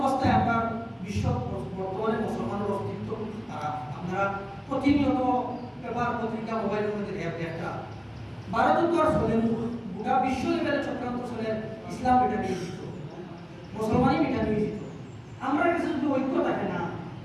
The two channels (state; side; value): identical; both; correlation 1.00